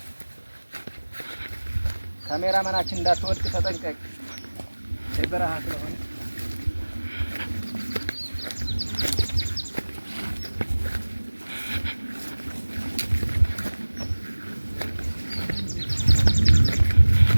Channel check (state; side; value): inverted; both; correlation -1.00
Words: ካሜራማናችን እንዳትወድቅ ተጠንቀቅ። በረሃ ስለሆነ